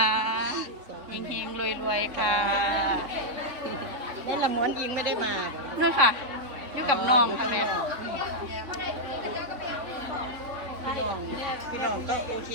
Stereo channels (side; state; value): left; late; 3.5 ms